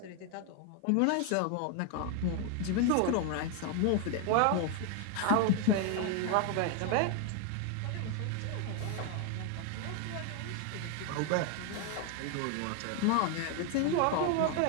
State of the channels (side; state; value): both; different; correlation 0.01